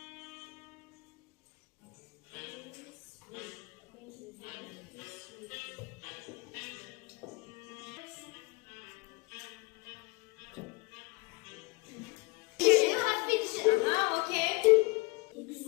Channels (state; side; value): quieter; right; 24.4 dB